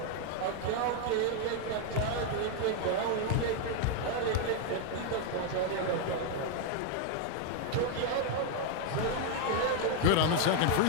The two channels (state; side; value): different; both; correlation 0.00